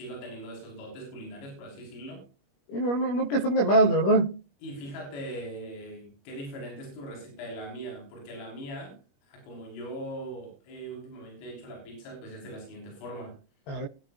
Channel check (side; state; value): right; late; 21 ms